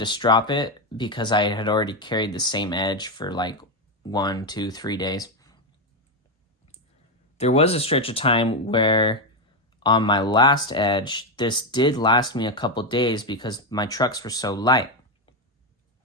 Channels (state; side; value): normal; both; correlation 0.07